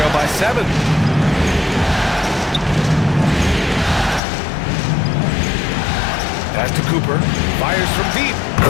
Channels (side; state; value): right; drops out; at 4.2 s